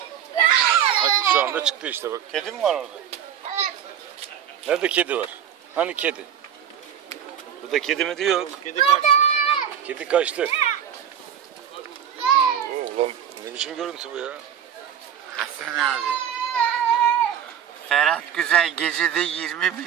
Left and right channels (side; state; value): left; quieter; 9.2 dB